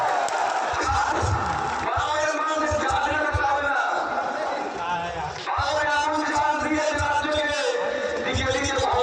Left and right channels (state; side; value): identical; both; correlation 1.00